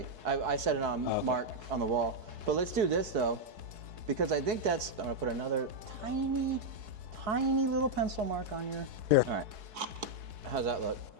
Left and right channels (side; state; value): left; late; 4.7 ms